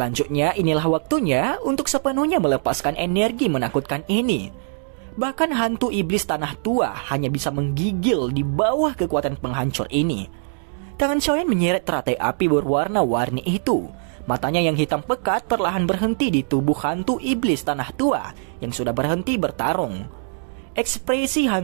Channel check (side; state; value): left; silent; digital silence